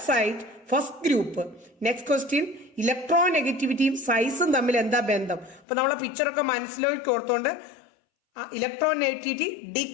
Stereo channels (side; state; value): right; drops out; at 5.7 s